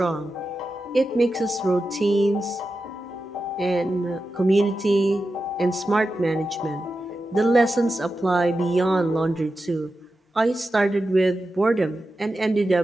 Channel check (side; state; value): both; normal; correlation 0.91